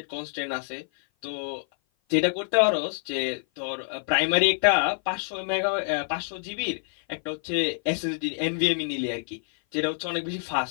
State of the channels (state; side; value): silent; right; 56 dB below the other